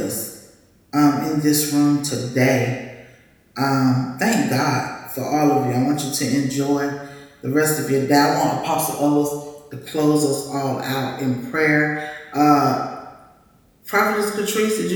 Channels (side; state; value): both; identical; correlation 1.00